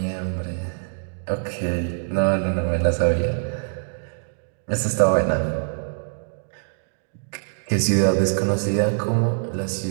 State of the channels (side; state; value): left; silent; digital silence